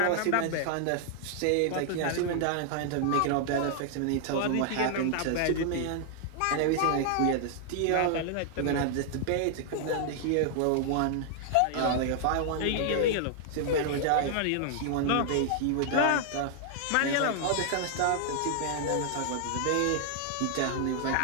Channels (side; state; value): both; different; correlation -0.01